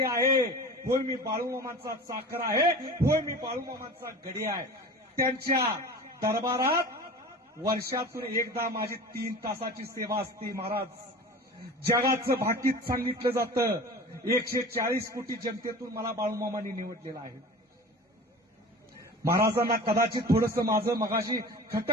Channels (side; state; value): both; normal; correlation 0.36